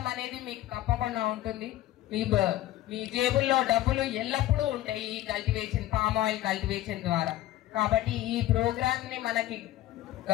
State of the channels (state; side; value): quieter; right; 14.6 dB